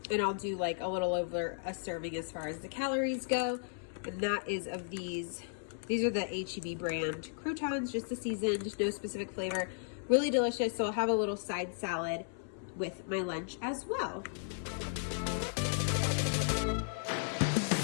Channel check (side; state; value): right; silent; 54 dB below the other